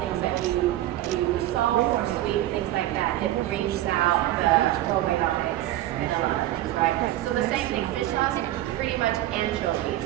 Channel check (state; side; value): quieter; left; 14.7 dB